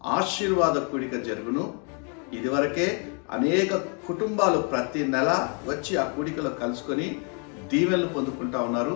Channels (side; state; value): right; quieter; 37.7 dB